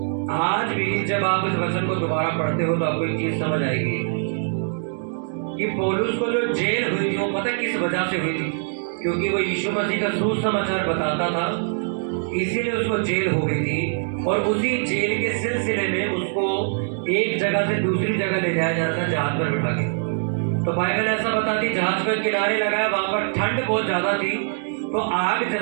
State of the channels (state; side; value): silent; left; digital silence